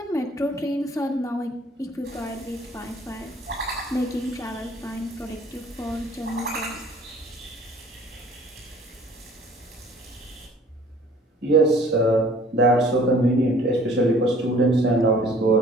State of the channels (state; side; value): normal; both; correlation 0.53